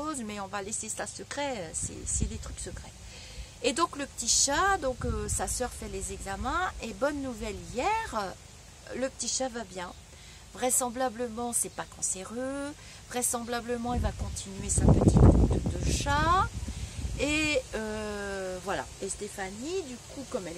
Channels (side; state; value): both; identical; correlation 1.00